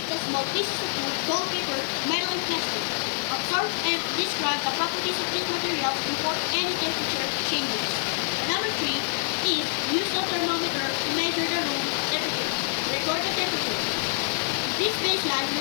the small pieces of wood, gold paper, metal, and plastic. Observe and describe the properties of these materials before any temperature changes. And number 3 is use the thermometer to measure the room temperature. Record the temperature. This baseline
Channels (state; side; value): silent; right; 61 dB below the other